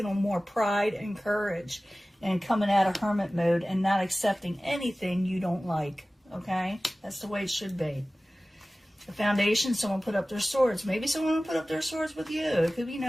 on more pride and courage and coming out of hermit mode and not accepting anything you don't like. Okay? That's the way it should be. The foundation, someone put up their swords. Maybe someone will put up their swords with you. It could be, you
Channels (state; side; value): normal; both; correlation 0.97